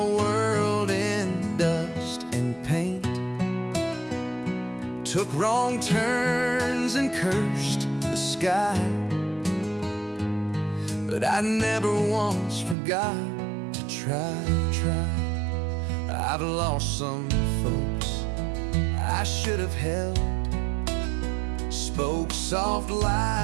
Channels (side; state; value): left; drops out; at 12.8 s